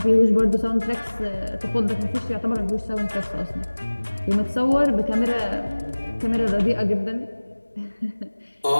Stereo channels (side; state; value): both; inverted; correlation -1.00